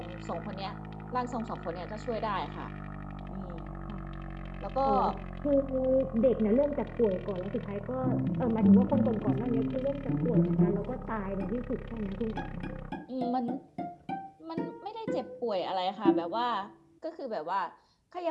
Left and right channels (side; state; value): both; identical; correlation 1.00